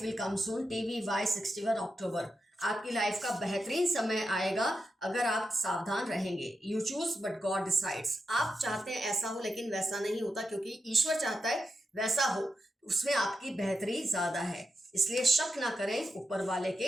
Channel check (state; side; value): normal; both; correlation 0.88